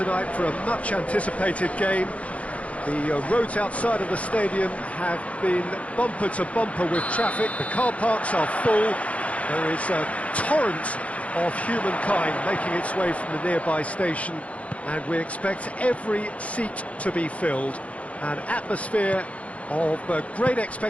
for a much-anticipated game. The roads outside of the stadium have been bumper to bumper with traffic. The car parks are full. There is a torrent of humankind making its way from the nearby station, and we expect every seat to be filled. An atmosphere of great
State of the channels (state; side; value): late; right; 0.064 ms